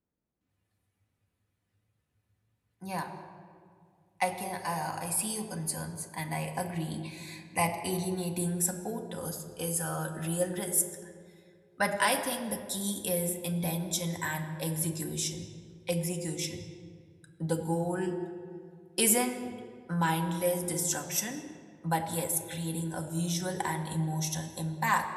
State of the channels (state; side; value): identical; both; correlation 1.00